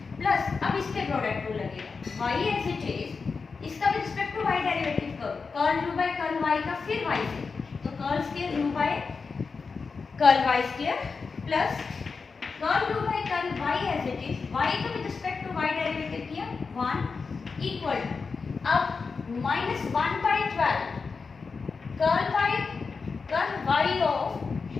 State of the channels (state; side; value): quieter; right; 4.8 dB